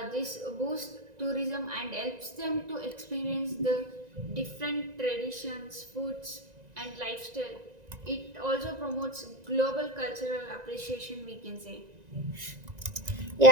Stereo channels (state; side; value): late; left; 1.9 ms